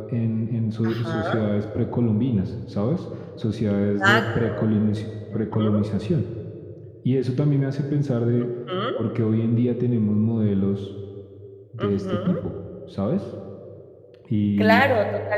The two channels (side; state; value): both; identical; correlation 1.00